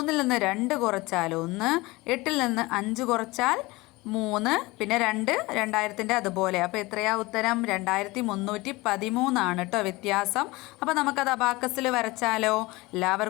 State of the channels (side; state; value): right; quieter; 21.8 dB